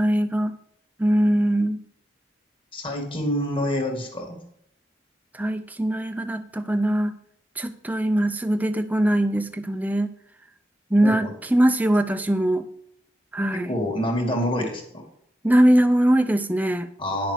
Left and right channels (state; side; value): normal; both; correlation 0.90